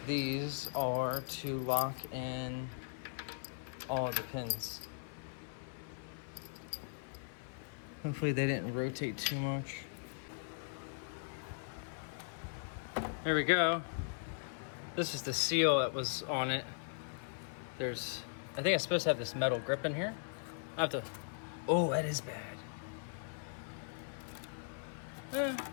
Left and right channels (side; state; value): right; silent; 52 dB below the other